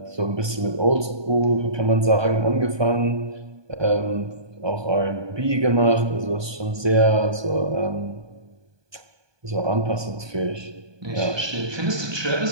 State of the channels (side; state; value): left; late; 1.2 ms